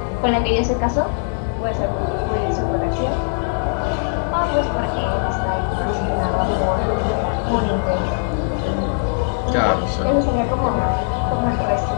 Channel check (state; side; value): silent; right; digital silence